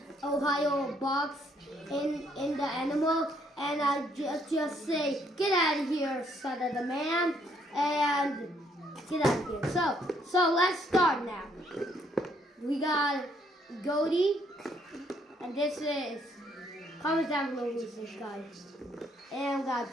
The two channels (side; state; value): both; normal; correlation 0.69